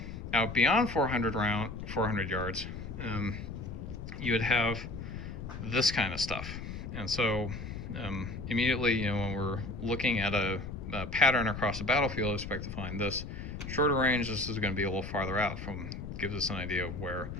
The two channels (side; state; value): left; noise; rumble, 8 dB below the sound